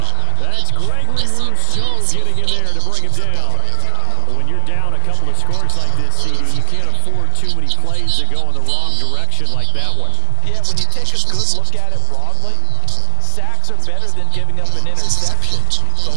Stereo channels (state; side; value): different; both; correlation 0.00